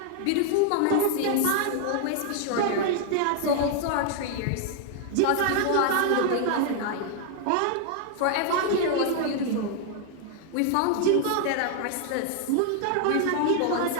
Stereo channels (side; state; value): both; different; correlation 0.00